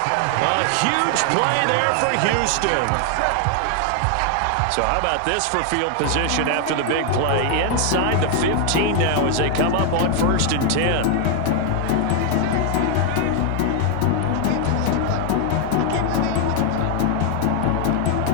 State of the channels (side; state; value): both; different; correlation 0.00